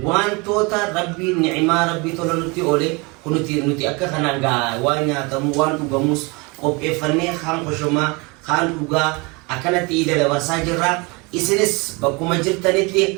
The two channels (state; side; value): quieter; left; 27.7 dB